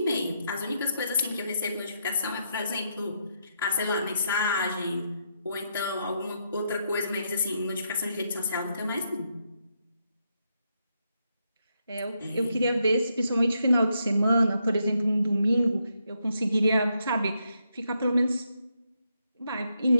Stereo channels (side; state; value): both; inverted; correlation -0.79